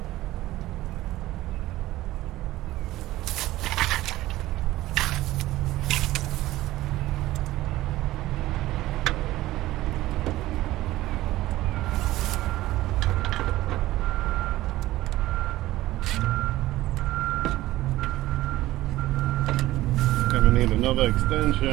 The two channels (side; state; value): left; quieter; 16.4 dB